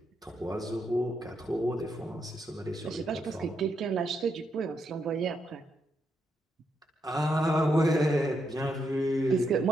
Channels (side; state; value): both; normal; correlation 0.80